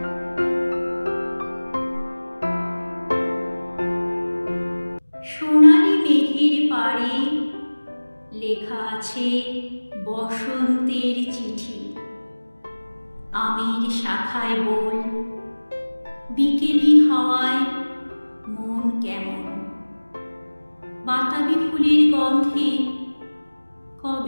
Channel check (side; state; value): both; inverted; correlation -1.00